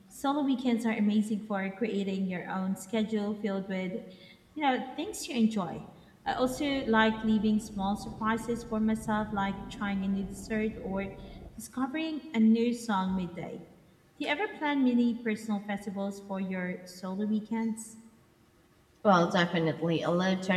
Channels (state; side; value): identical; both; correlation 1.00